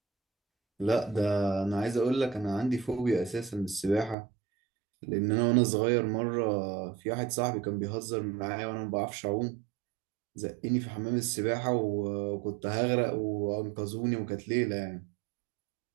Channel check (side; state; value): left; drops out; at 4.2 s